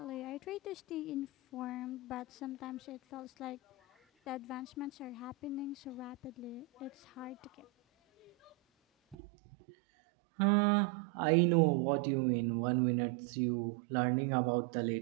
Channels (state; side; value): drops out; left; at 9.2 s